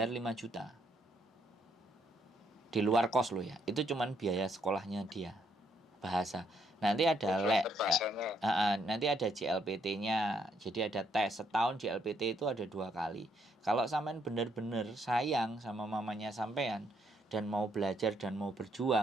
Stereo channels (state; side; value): normal; both; correlation 0.72